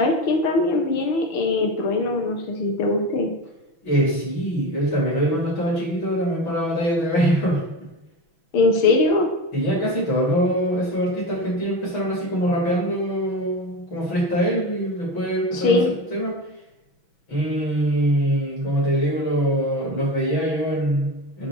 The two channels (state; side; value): late; right; 6.1 ms